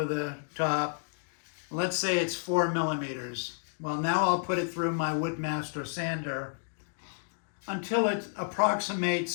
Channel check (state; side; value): silent; right; digital silence